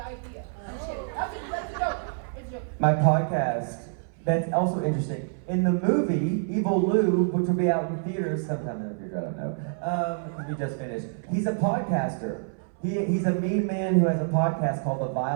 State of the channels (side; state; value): left; silent; 60 dB below the other